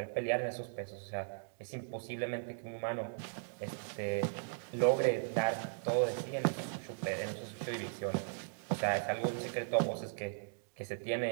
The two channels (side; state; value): left; silent; digital silence